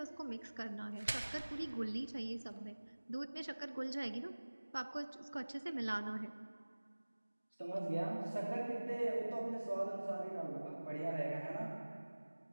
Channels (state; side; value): inverted; both; correlation -1.00